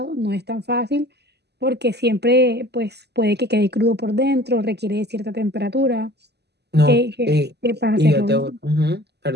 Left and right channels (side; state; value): left; late; 0.49 ms